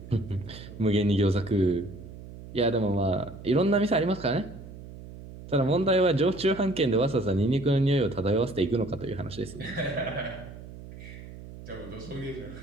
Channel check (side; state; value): right; noise; hum, 15 dB below the sound